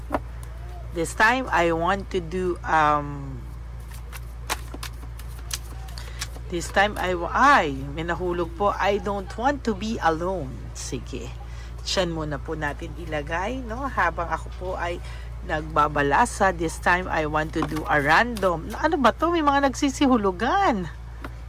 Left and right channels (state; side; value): identical; both; correlation 1.00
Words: This time, I want to do This time may nahulog po. I don't want to be alone. Sige. Diyan muna po natin ilagay, no? Habang ako po ay nagbabalasa. This time, I want to do a random. Ano ba to? May mga nagsisihulugan.